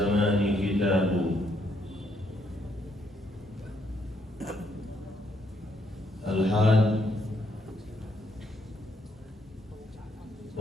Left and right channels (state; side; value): normal; both; correlation 0.73